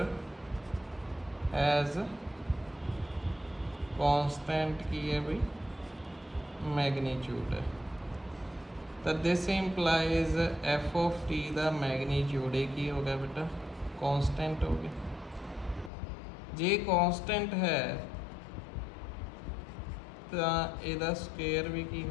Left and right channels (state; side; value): drops out; right; at 15.9 s